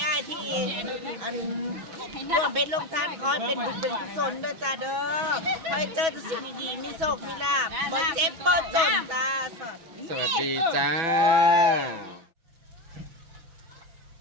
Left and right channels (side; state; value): left; late; 6.2 ms